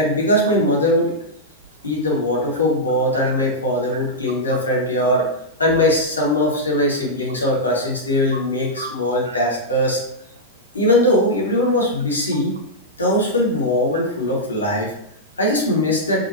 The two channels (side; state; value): both; normal; correlation -0.08